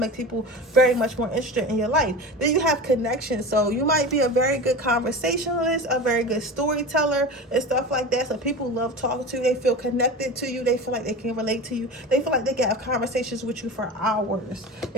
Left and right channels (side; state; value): both; normal; correlation 0.30